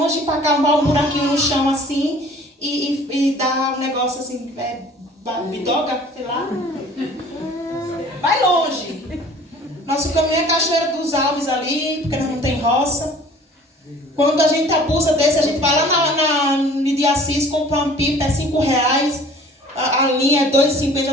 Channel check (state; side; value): normal; both; correlation 0.49